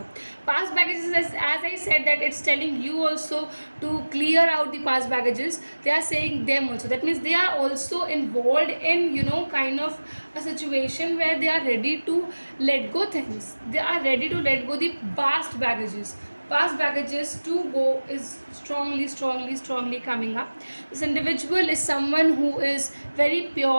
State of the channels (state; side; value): inverted; both; correlation -1.00